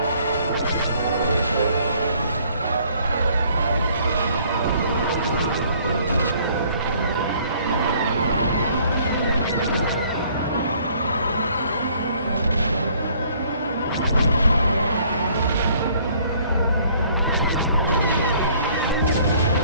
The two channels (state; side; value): inverted; both; correlation -0.60